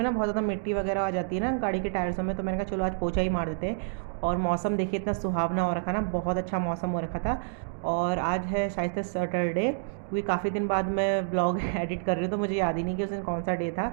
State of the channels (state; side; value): silent; left; digital silence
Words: ना बहुत ज़्यादा मिट्टी वगैरह आ जाती है ना गाड़ी के टायर्सों में। तो मैंने कहा चलो आज पोछा ही मार देते हैं। और मौसम देखिए इतना सुहावना हो रखा ना, बहुत अच्छा मौसम हो रखा था। और आज है शायद से सैटरडे, क्योंकि काफ़ी दिन बाद मैं ब्लॉग एडिट कर रही हूँ तो मुझे याद ही नहीं कि उस दिन कौन सा डे